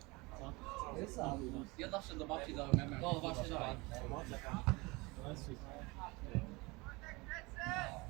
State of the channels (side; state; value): left; quieter; 24.8 dB